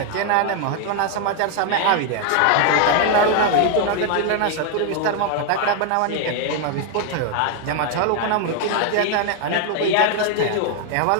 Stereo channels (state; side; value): different; both; correlation 0.01